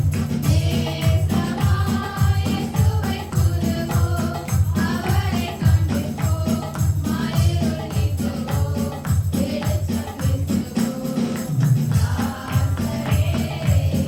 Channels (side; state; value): both; identical; correlation 1.00